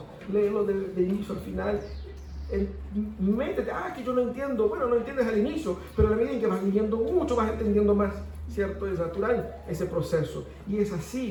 Léelo de inicio al final. Métete, que yo no entiendo. Bueno, no entiendes al inicio, pero a la medida en que vas leyendo mucho, vas entendiendo más, ¿cierto? Es natural ese proceso. Y es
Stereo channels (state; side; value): identical; both; correlation 1.00